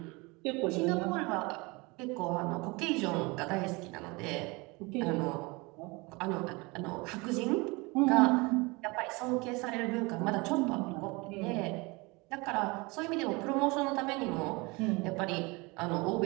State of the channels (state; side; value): quieter; left; 25.8 dB